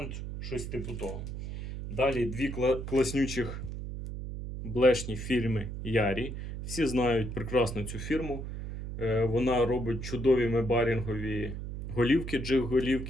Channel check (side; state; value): right; noise; hum, 7 dB below the sound